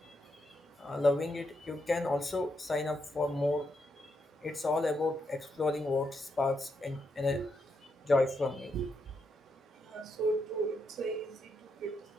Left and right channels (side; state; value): both; normal; correlation 0.81